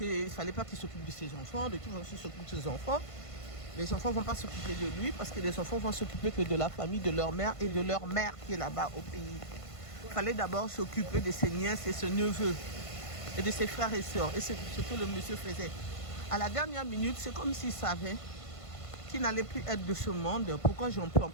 ne fallait pas qu'il s'occupe de ses enfants, de qui va s'occuper de ses enfants. Les enfants ne vont pas s'occuper de lui parce que les enfants vont s'occuper que de la famille, de leur mère et de leur mère qui est là-bas au pays. Il fallait d'abord s'occuper de ses nièces et ses neveux et de ses frères et sœurs. Et c'est ce que le monsieur faisait. À la dernière minute, c'est comme s'il savait qu'il n'allait plus être de ce monde. Pourquoi je n'emploie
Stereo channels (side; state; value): right; late; 1.5 ms